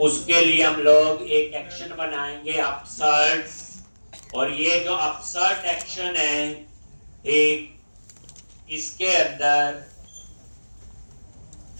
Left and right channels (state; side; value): inverted; both; correlation -1.00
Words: उसके लिए हम लोग एक एक्शन बनाएंगे अपसर्ट। और ये जो अपसर्ट एक्शन है एक, इसके अंदर